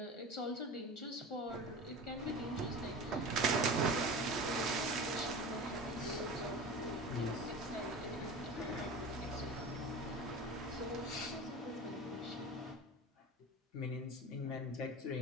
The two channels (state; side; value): normal; both; correlation 0.32